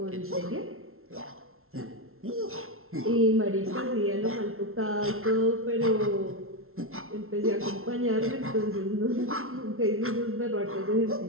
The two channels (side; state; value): left; late; 0.62 ms